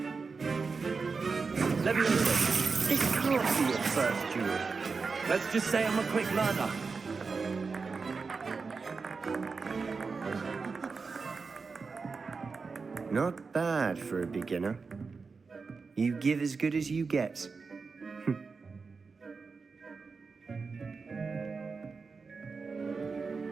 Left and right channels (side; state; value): left; quieter; 4.7 dB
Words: Levioso, it can't be your first duel. Let's just say I'm a quick learner. Not bad for a beginner. You give as good as you get.